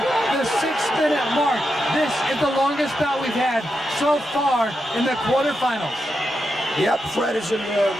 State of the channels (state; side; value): normal; both; correlation 0.86